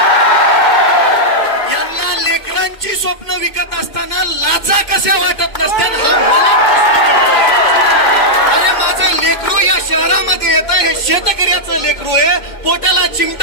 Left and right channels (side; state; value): right; late; 2.2 ms